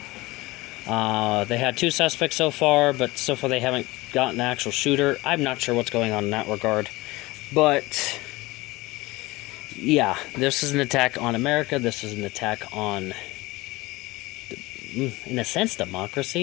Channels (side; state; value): right; quieter; 20.9 dB